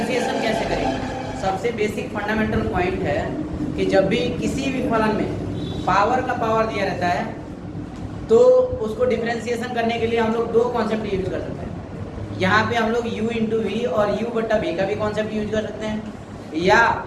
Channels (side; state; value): both; identical; correlation 1.00